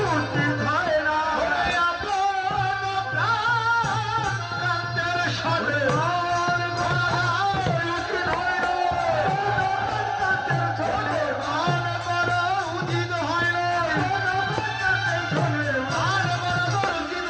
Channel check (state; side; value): identical; both; correlation 1.00